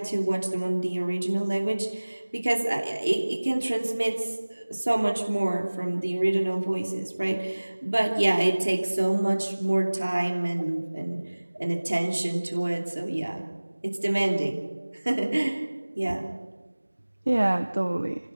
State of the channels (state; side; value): inverted; both; correlation -1.00